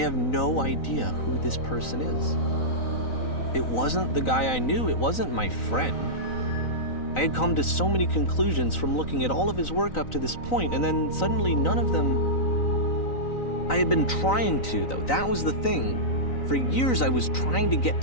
no idea who this person is. It wasn't the guy I knew, it wasn't my friend. I had come to so many conclusions from looking at all of his work up to this point, and then suddenly none of them... I had been trying to, though. That was the thing. For years I was trying to get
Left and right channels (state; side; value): late; right; 3.9 ms